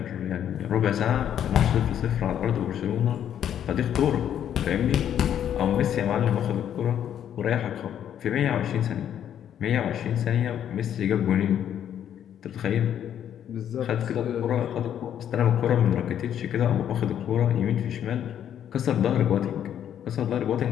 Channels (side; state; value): right; quieter; 9.8 dB